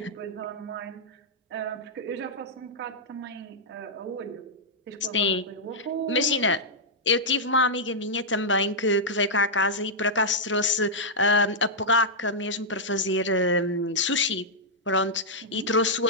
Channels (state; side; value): normal; both; correlation -0.08